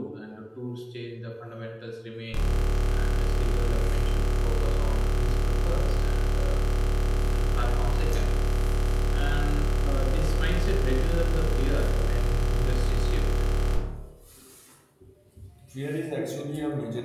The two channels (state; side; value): identical; both; correlation 1.00